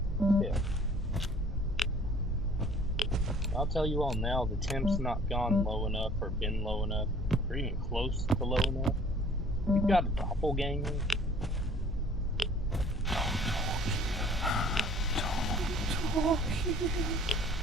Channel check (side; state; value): both; normal; correlation 0.53